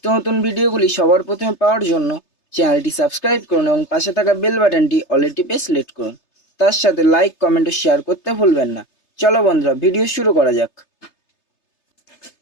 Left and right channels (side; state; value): right; late; 3.3 ms